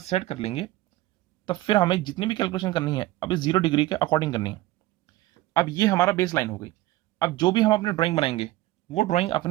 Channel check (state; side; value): quieter; left; 16.9 dB